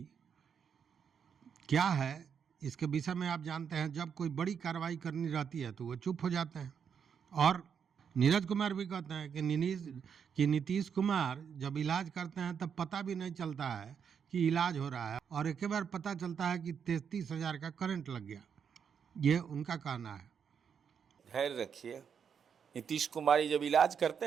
क्या है, इसके विषय में आप जानते हैं। जब कोई बड़ी कार्रवाई करनी रहती है तो वो चुप हो जाते हैं। और नीरज कुमार भी कहते हैं कि नीतीश कुमार जब इलाज करते हैं तब पता भी नहीं चलता है कि इलाज हो रहा है, और एक बार पता चलता है कि 33,000 का करंट लग गया। ये उनका कहना है। धैर्य रखिए। नीतीश कुमार जब इलाज करते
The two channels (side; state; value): left; quieter; 7.2 dB